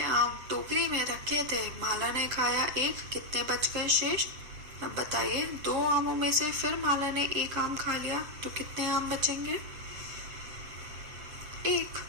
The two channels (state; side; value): late; left; 7.6 ms